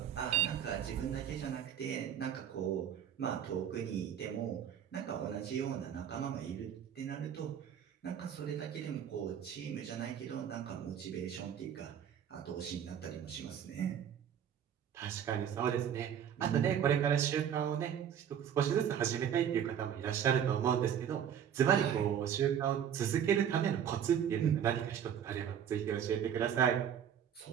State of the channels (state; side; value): quieter; left; 9.0 dB